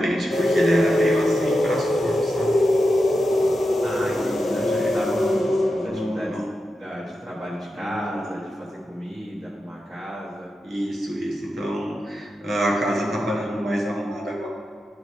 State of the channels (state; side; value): normal; both; correlation 0.89